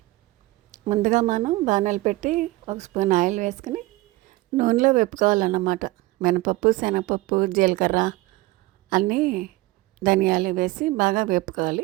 ముందుగా మనం బాణాలు పెట్టి ఒక స్పూన్ ఆయిల్ వేసుకుని నూనెలో వేపుకోవాలన్నమాట. మినపప్పు, శనగపప్పు, జీలకర్ర అన్నీ ధనియాలు వేసి బాగా వేపుకోవాలి.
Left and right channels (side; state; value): left; quieter; 19.7 dB